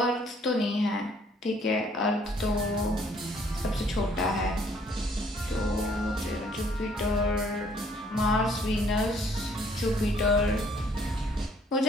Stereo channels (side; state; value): both; normal; correlation 0.63